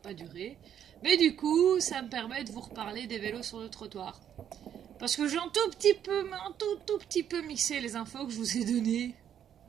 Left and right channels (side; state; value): left; quieter; 9.5 dB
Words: durer. Mais du coup, ça me permet de vous reparler des vélos sur le trottoir. Parce que j'ai un tout petit peu mixé les infos que je vous ai données